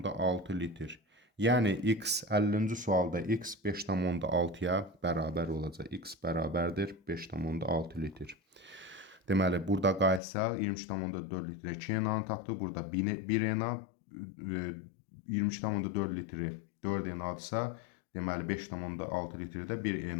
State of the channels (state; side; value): drops out; right; at 10.2 s